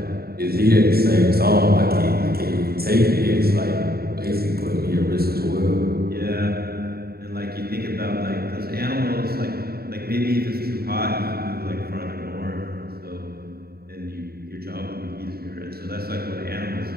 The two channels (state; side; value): late; left; 0.45 ms